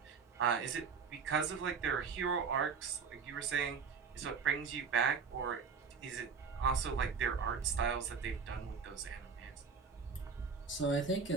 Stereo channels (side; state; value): left; quieter; 5.7 dB